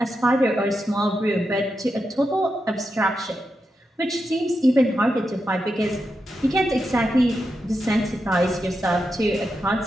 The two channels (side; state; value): both; normal; correlation 0.87